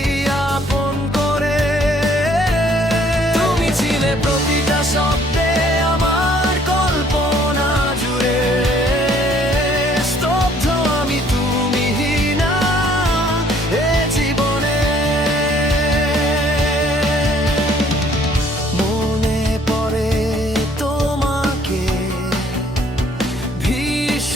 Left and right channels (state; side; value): normal; both; correlation 0.61